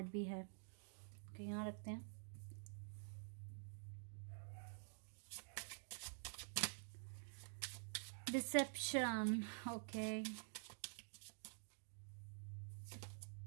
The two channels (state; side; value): silent; left; digital silence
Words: भी है। ओके, यहाँ रखते हैं। Deception, okay,